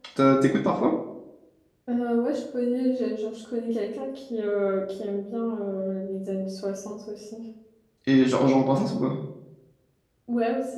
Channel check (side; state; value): both; identical; correlation 1.00